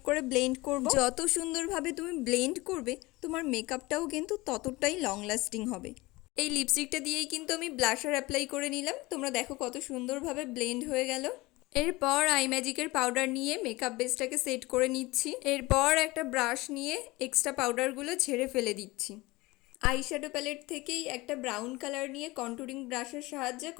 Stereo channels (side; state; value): right; quieter; 21.4 dB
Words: করে ব্লেন্ড করব। যত সুন্দরভাবে তুমি ব্লেন্ড করবে তোমার মেকআপটাও কিন্তু ততটাই লং লাস্টিং হবে। এই লিপস্টিকটা দিয়েই কিন্তু আমি ব্লাশার অ্যাপ্লাই করে নিলাম। তোমরা দেখো কত সুন্দরভাবে ব্লেন্ড হয়ে গেল। এরপর আই ম্যাজিকের পাউডার নিয়ে মেকআপ বেসটাকে সেট করে নিচ্ছি। এরপর একটা ব্রাশ নিয়ে এক্সট্রা পাউডারগুলো ঝেড়ে ফেলে দিচ্ছি। আইশ্যাডো প্যালেট থেকেই একটা ব্রাউন কালার নিয়ে কন্টুরিং ব্রাশের সাহায্যে